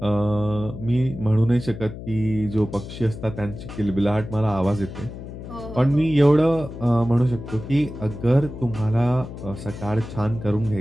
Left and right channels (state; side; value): noise; left; hum, 11 dB below the sound